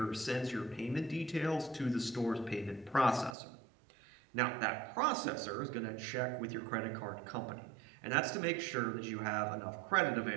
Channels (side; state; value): left; drops out; at 3.4 s